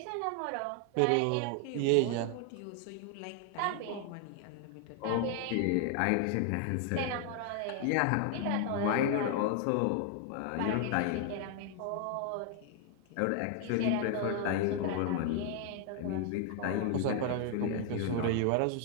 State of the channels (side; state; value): both; different; correlation 0.00